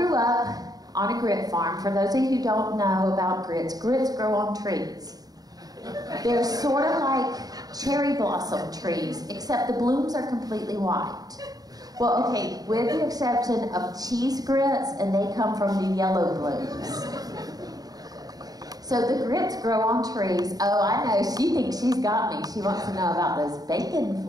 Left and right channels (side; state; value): left; late; 0.18 ms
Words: up on a grit farm. For those of you who don't know about grits, grits grow on trees. They're sort of like cherry blossom trees, except the blooms are completely white. Well, okay, with the exception of cheese grits, and they come from the yellow blooms. So the grits grow on trees. Oh, I know, she thinks she's got me. She wants to know about those